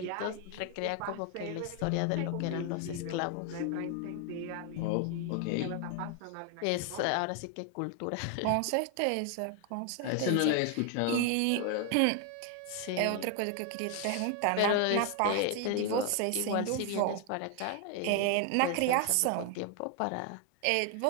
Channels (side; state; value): both; different; correlation 0.01